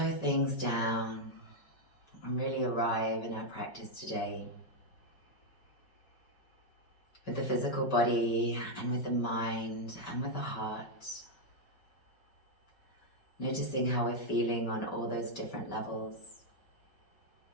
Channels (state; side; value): late; right; 5.1 ms